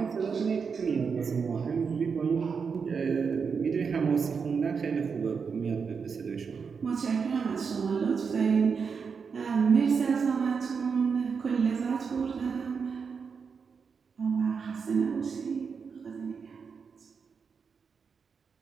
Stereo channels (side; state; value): left; quieter; 5.8 dB